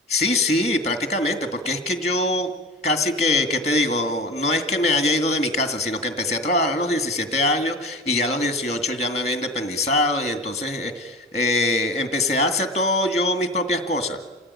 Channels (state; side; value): normal; both; correlation 0.33